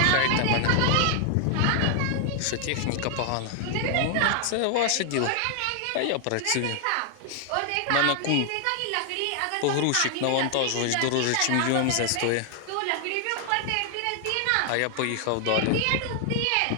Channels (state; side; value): different; both; correlation 0.00